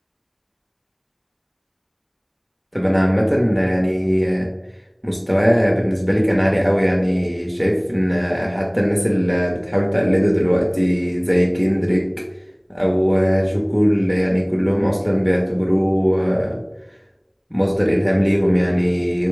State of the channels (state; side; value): identical; both; correlation 1.00